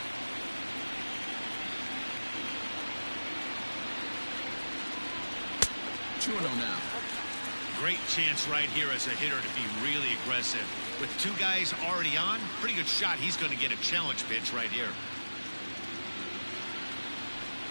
now. Great chance right here as a hitter to be really aggressive. With 2 guys already on, pretty good shot. He's going to get a challenge pitch right here.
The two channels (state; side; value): inverted; both; correlation -1.00